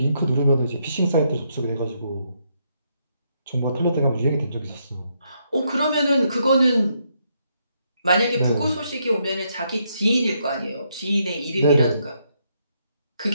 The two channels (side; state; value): both; inverted; correlation -0.76